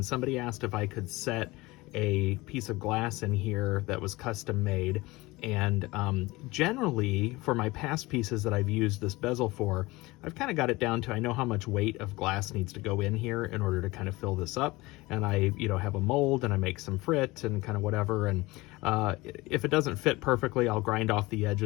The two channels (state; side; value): quieter; right; 21.4 dB